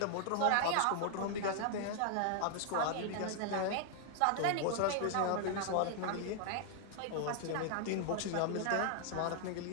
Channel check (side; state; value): both; different; correlation 0.00